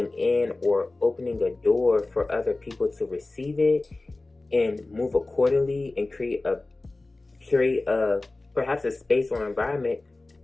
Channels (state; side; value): quieter; right; 3.1 dB